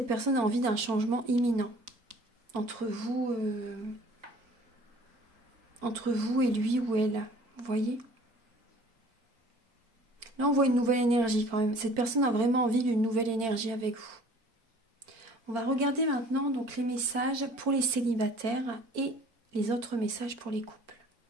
personne a envie d'un changement imminent entre vous et lui ou elle. Vous voyez? Là, on voit une nouvelle énergie quand même. Cette personne a vraiment envie d'une nouvelle énergie avec vous. On va regarder maintenant donc les messages pour les célibataires et les autres messages pour les couples.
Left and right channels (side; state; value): left; late; 4.4 ms